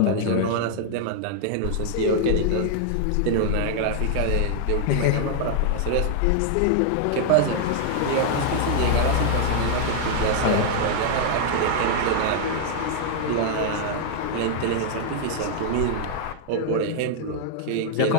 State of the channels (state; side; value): different; both; correlation -0.01